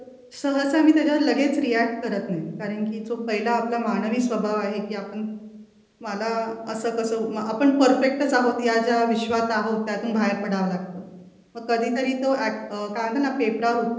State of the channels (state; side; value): identical; both; correlation 1.00